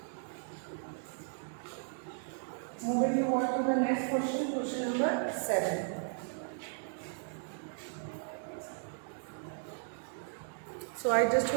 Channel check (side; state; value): left; silent; digital silence